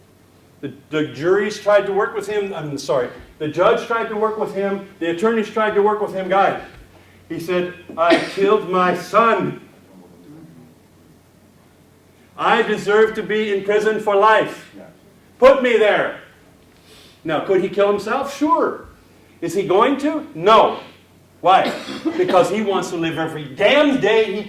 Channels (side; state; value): both; identical; correlation 1.00